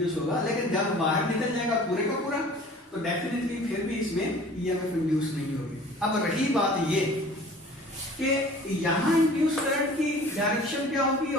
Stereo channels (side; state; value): both; normal; correlation 0.47